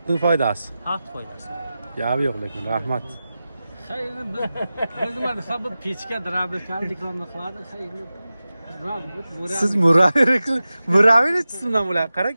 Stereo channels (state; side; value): inverted; both; correlation -0.95